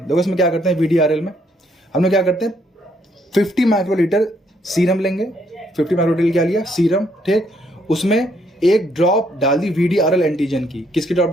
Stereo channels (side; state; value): both; normal; correlation 0.70